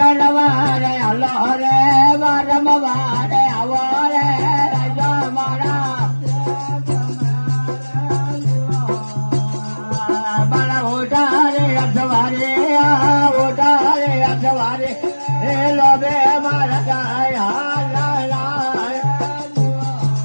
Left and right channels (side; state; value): both; inverted; correlation -1.00